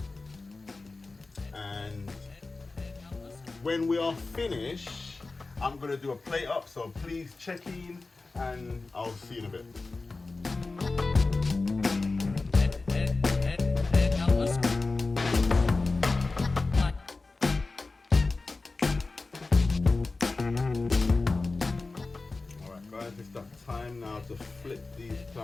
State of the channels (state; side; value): quieter; right; 3.6 dB